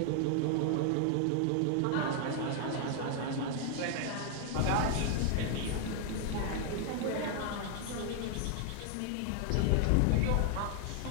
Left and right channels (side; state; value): both; different; correlation 0.00